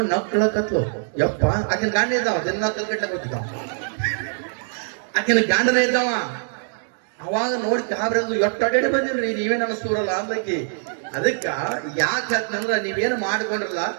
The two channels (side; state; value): left; silent; digital silence